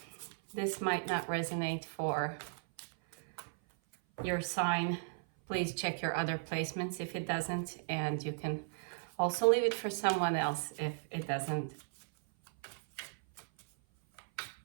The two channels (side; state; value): left; silent; 54 dB below the other